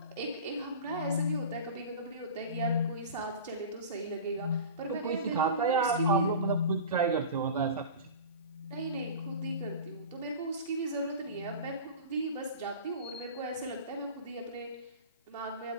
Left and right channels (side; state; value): both; inverted; correlation -0.34